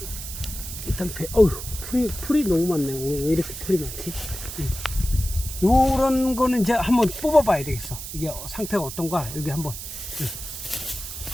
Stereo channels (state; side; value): noise; right; hiss, 9 dB below the sound